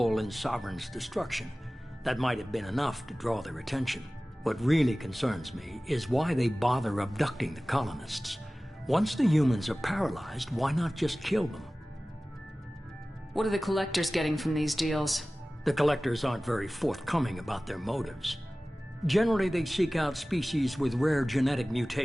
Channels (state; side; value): normal; both; correlation 0.97